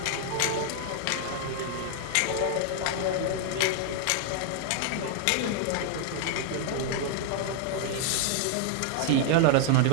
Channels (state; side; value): different; both; correlation 0.00